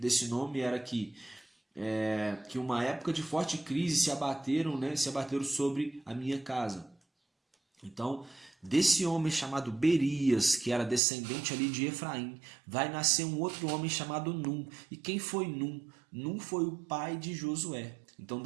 nome era que uma época de forte crise se abateram sobre a minha casa. Então, desse homem chamado Berias, que era descendente ali de Efraim, vai nascer um outro homem chamado Num. E quem foi Num? Num foi o pai de Josué. Então,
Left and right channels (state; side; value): drops out; left; at 11.0 s